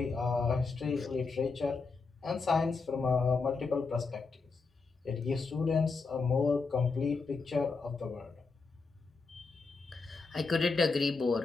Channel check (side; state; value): right; quieter; 4.3 dB